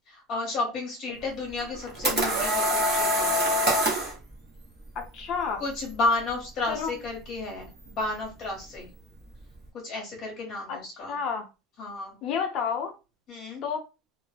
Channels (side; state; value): both; normal; correlation 0.31